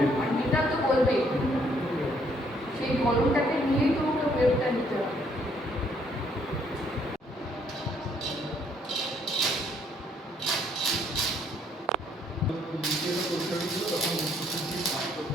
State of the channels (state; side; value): normal; both; correlation 0.67